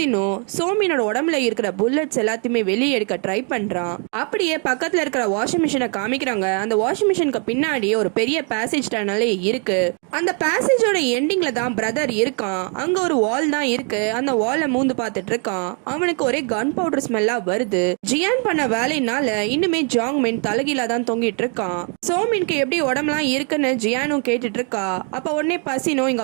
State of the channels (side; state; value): left; quieter; 38.3 dB